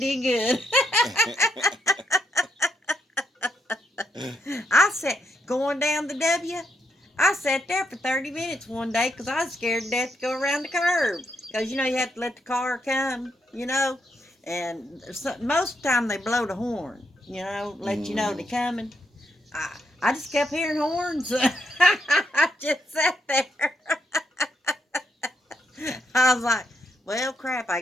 good. I sat, going down the W, I sat there for 30 minutes one day because I was scared to death to go around the curb. Because, you have to let the car come, And most of the time they blow the horn, let you know they're coming. I just kept hearing horns. I just sat there. I was like, well, crap, I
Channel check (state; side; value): normal; both; correlation 0.79